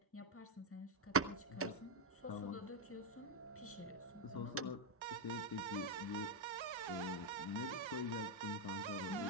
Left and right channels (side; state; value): both; normal; correlation 0.01